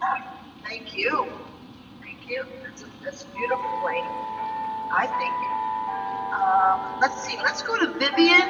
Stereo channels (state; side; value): identical; both; correlation 1.00